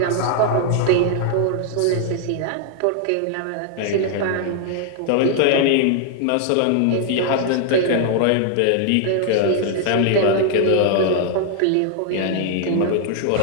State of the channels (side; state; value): both; different; correlation 0.00